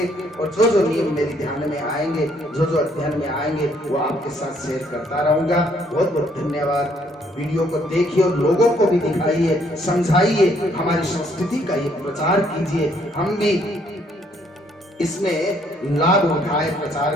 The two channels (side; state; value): both; normal; correlation 0.67